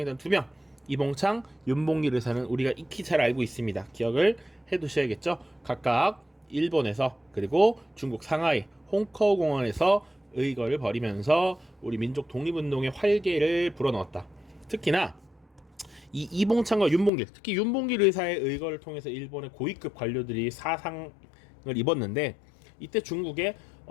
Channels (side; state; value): right; drops out; at 17.1 s